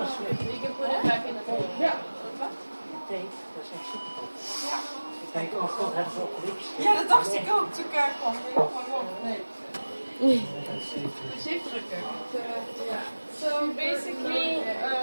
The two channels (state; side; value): inverted; both; correlation -1.00